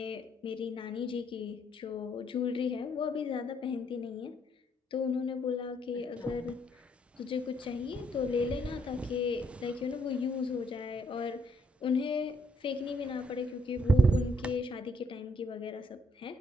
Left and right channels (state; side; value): normal; both; correlation 0.71